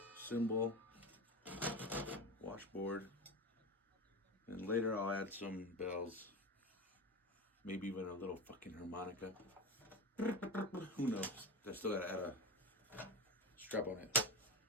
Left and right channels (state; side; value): normal; both; correlation 0.22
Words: cymbal, washboard, and later I'll add some bells, maybe even a little fucking harmonica. Who knows? I still gotta add a strap on it.